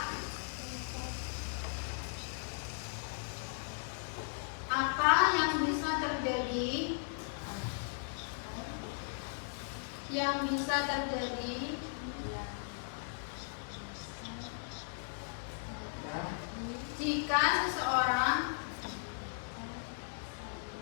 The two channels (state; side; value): silent; right; digital silence